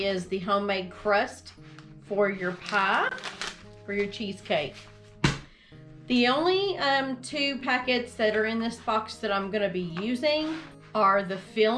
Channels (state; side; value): identical; both; correlation 1.00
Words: the homemade crust for your pie, for your cheesecake. The only two packets that are in this box that I'm going to be using are the